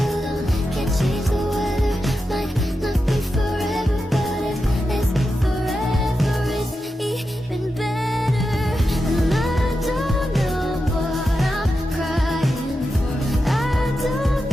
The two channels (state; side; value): normal; both; correlation 0.89